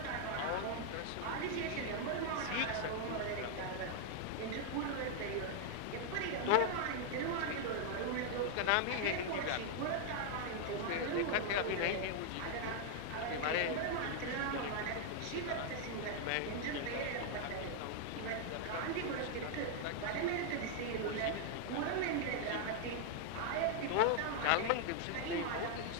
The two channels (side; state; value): both; different; correlation 0.00